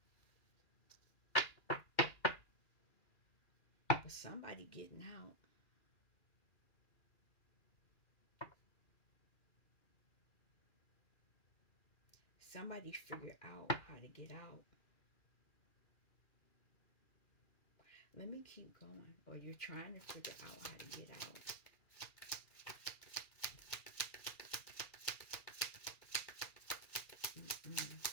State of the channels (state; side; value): late; right; 2.4 ms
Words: But somebody getting out. Somebody figured out how to get out. Let me keep going. Or you're trying to figure out how to get out. Mm-mm.